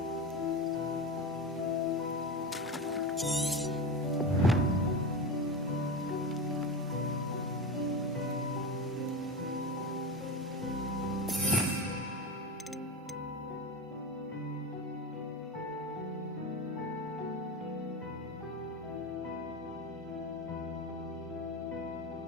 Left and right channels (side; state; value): both; normal; correlation 0.22